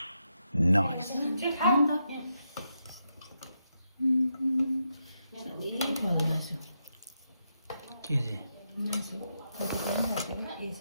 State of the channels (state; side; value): inverted; both; correlation -0.83